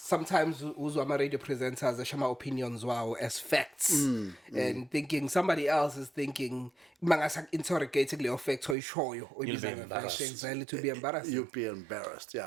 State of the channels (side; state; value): left; drops out; at 8.8 s